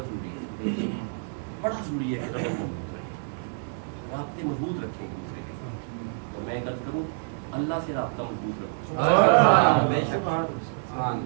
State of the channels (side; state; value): left; silent; 60 dB below the other